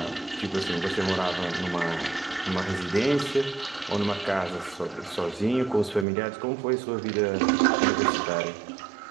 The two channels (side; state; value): left; drops out; at 6.1 s